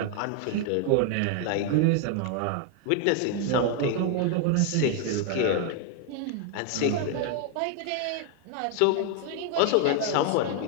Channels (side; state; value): both; different; correlation 0.00